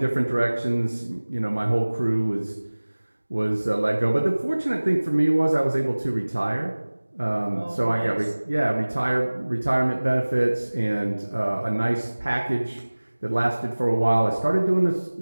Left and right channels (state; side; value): inverted; both; correlation -1.00